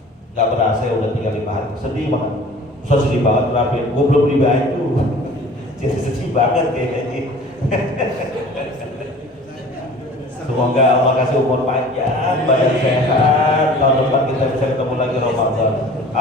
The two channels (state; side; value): normal; both; correlation 0.45